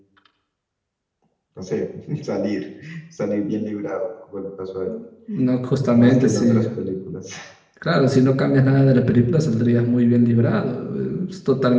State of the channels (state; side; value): identical; both; correlation 1.00